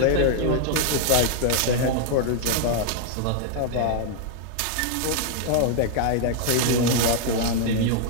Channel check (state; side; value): different; both; correlation 0.00